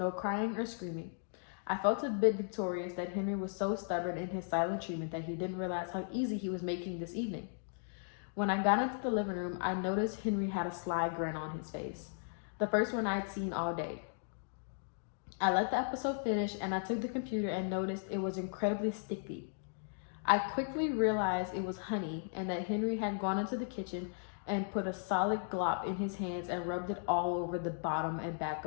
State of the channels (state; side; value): silent; right; digital silence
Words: crying or screaming. I felt a bit victorious that Henry was so stubborn in his silent treatment that he didn't realize how easy he was making this evening. When I got into the living room, I noticed Henry had a sly grin on his face, the first one I'd seen all day. I let the episode finish and I took the computer and noticed it was incredibly sticky. I quickly realized it was honey and that Henry had gone into the kitchen and put a solid glop in his hands and rubbed it all over the bottom and back